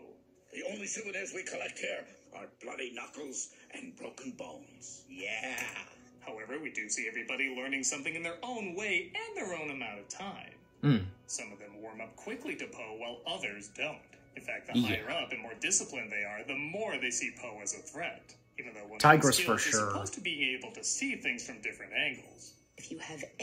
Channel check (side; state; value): both; identical; correlation 1.00